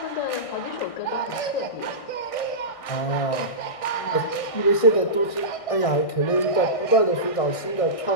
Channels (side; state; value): right; late; 1.6 ms